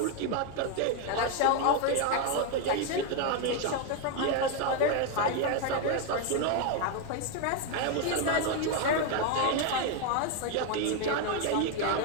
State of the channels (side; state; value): both; different; correlation 0.01